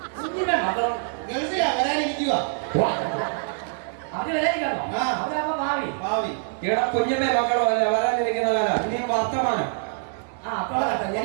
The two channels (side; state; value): left; silent; digital silence